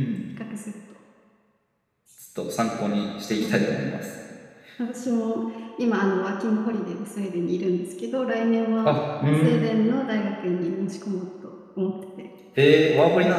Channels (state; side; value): identical; both; correlation 1.00